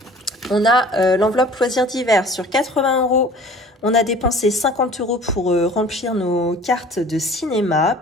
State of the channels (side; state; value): both; normal; correlation 0.47